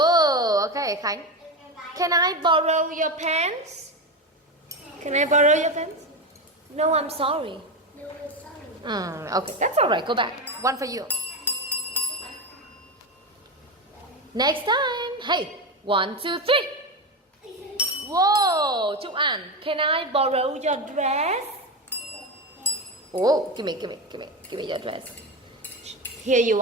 okay, Khánh. Can I borrow your pants? Can I borrow your pants? No, I'm sorry. Okay, that's alright. Go back. One for you. Next time. Hey, 1, 2, 3. Whoa, Chúc An, can I borrow your dress? Oh, give me your dress. Here you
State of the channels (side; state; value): both; normal; correlation 0.17